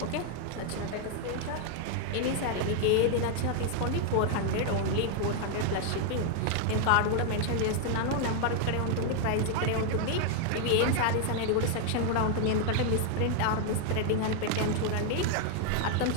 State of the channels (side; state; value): both; different; correlation 0.00